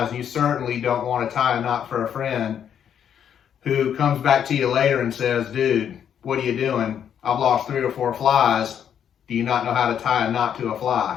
and you certainly don't want to tie a knot for a friend who comes back to you later and says, dude, what are you doing? I've lost 3 or 4 flies. Do you not know how to tie a knot to a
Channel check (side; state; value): right; quieter; 8.8 dB